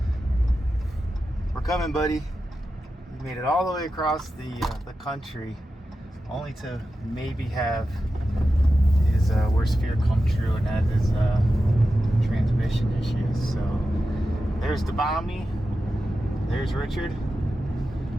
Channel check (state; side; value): normal; both; correlation 0.91